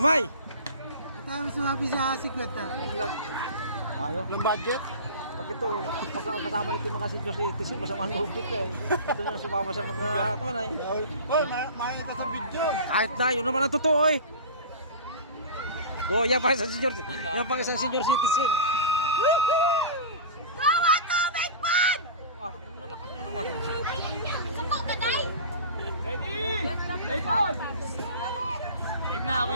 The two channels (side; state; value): both; inverted; correlation -0.32